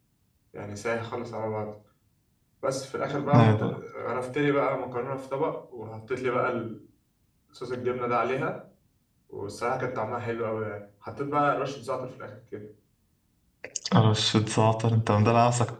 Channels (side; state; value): both; identical; correlation 1.00